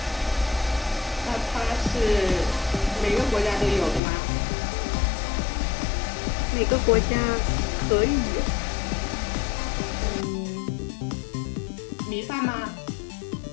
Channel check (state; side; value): drops out; right; at 4.0 s